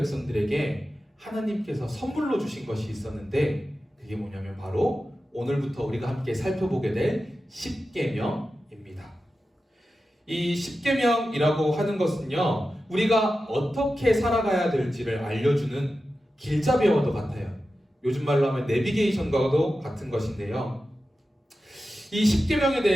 하나님께서 선물로 주신 것이 있었는데 그게 뭐냐면 바로 오늘부터 우리가 함께 살펴보게 될 십계명입니다. 이 십계명이라고 하는 것은요, 우리가 어떻게 살아가야 될지를 알려주는 길잡이와도 같아요. 요즘 말로 하면 내비게이션과도 같은 것인데요. 이 십계명에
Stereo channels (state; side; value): normal; both; correlation 0.92